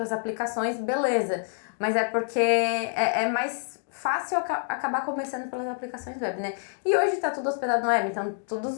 aplicações, beleza. Mas é porque é mais fácil acabar começando pelas aplicações web, né? E hoje tá tudo hospedado no web, então todos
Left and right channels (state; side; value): silent; right; digital silence